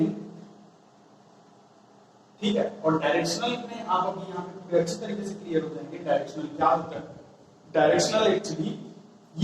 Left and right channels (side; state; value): both; identical; correlation 1.00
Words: ठीक है। और डायरेक्शनल में आप अभी यहाँ पे पूरे अच्छी तरीके से क्लियर हो जाएंगे डायरेक्शनल क्या होता है। डायरेक्शनल एक्चुअली